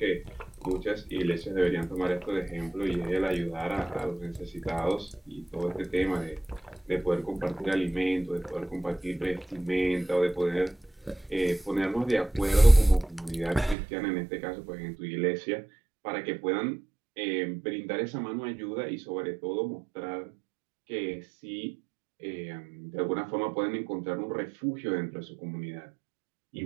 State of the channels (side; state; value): left; drops out; at 13.8 s